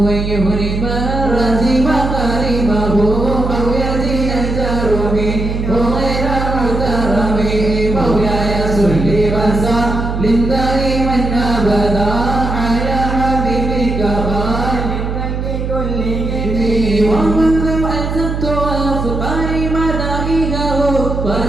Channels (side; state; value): right; noise; hum, 3 dB below the sound